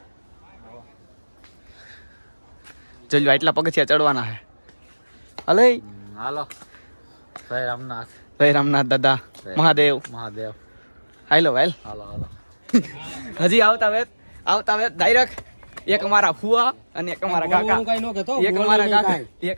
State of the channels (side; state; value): both; inverted; correlation -1.00